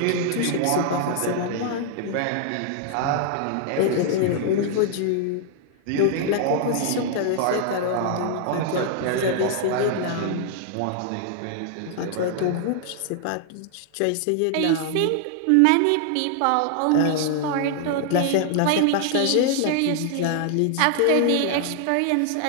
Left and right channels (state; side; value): different; both; correlation 0.00